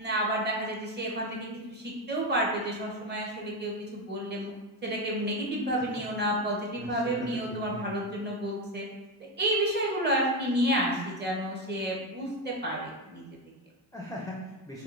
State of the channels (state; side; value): normal; both; correlation 0.12